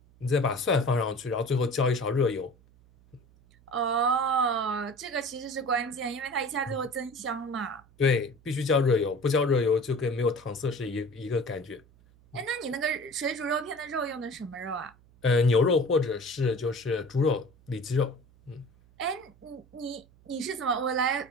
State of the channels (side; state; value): right; noise; hum, 28 dB below the sound